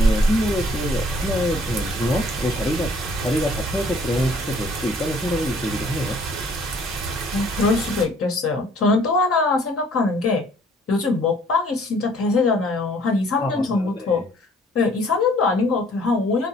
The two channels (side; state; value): both; normal; correlation 0.58